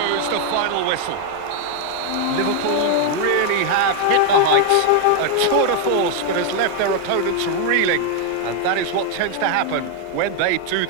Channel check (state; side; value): different; both; correlation 0.01